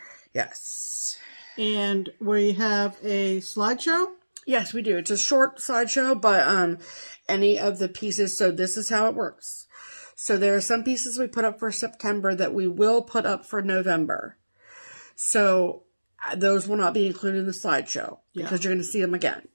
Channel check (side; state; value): both; inverted; correlation -1.00